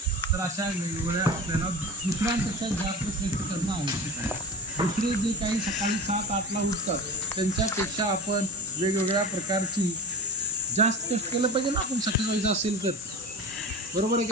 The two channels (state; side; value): normal; both; correlation 0.33